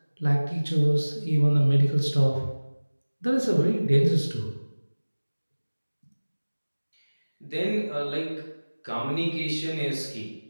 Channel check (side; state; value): both; inverted; correlation -1.00